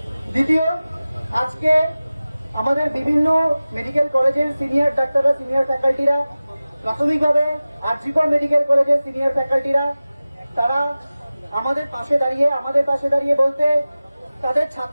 দ্বিতীয়, আজকে আমাদের বিভিন্ন মেডিকেল কলেজের সিনিয়র ডাক্তাররা, সিনিয়র ফ্যাকাল্টিরা, প্রাথমিকভাবে আরজিকর মেডিকেল কলেজের সিনিয়র ফ্যাকাল্টিরা, তারা আমাদের পাশে দাঁড়িয়ে বলতে তাদের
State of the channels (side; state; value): both; inverted; correlation -0.97